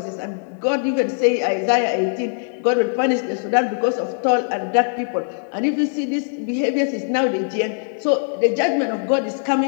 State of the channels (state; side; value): silent; right; digital silence